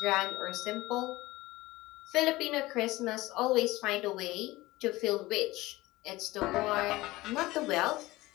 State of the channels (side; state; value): right; quieter; 19.3 dB